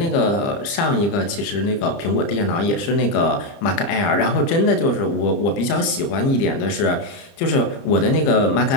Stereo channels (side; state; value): right; late; 30 ms